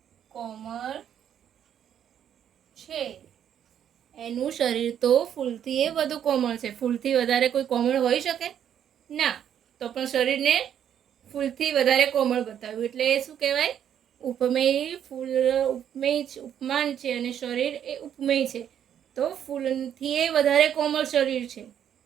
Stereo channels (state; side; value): quieter; left; 9.4 dB